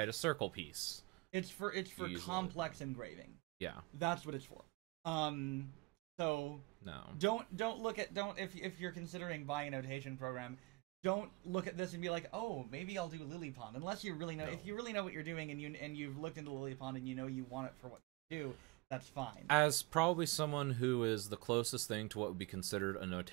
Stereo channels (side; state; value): left; quieter; 24.7 dB